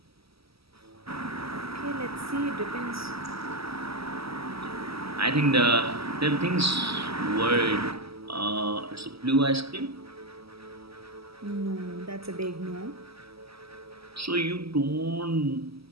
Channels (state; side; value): late; left; 0.76 ms